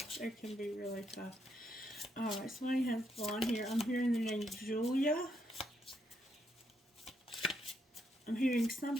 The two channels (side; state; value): both; normal; correlation 0.77